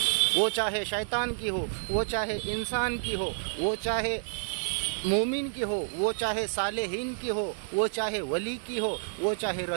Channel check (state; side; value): silent; left; digital silence